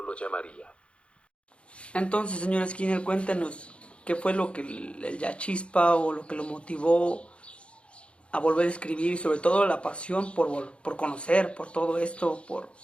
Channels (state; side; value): late; right; 0.059 ms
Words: lo llamaría. Entonces, señor Skinner, cuéntenos qué fue lo que la chispa o lo que lo motivó a volver a escribir y sobre todo la pasión por conocer, por todo esto,